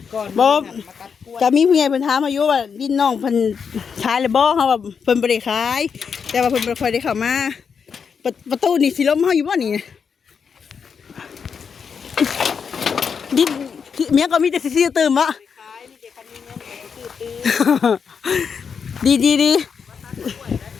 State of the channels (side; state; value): right; quieter; 6.4 dB